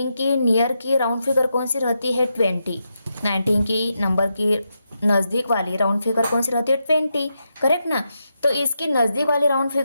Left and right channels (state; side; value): inverted; both; correlation -0.85